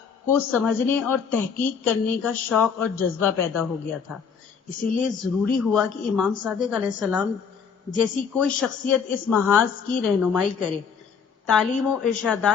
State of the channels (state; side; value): quieter; right; 6.4 dB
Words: کو سمجھنے اور تحقیق کرنے کا شوق اور جذبہ پیدا ہو گیا تھا۔ اسی لیے ضروری ہوا کہ امام صادق علیہ السلام جیسی کوئی شخصیت اس محاذ کی رہنمائی کرے، تعلیم و